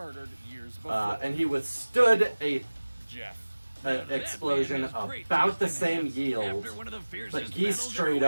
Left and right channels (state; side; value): inverted; both; correlation -1.00